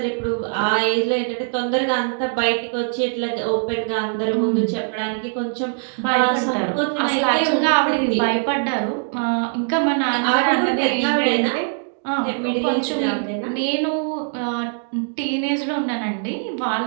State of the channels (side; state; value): left; silent; digital silence